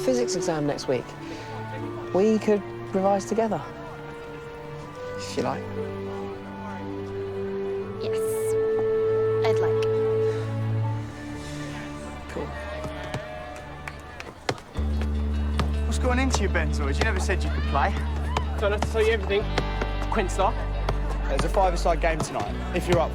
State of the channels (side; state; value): both; identical; correlation 1.00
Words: exam next week. We could revise together. If you like. Yes. I'd like. Cool. What's going into your Benzoids? You never said you could play. Don't have to tell you everything. Quinstar. There's a five-a-side game tonight, if you're up